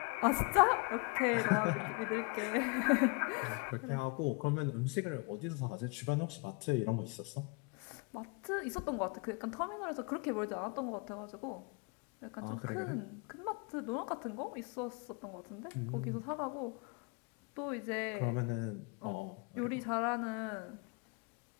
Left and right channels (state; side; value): quieter; right; 31.9 dB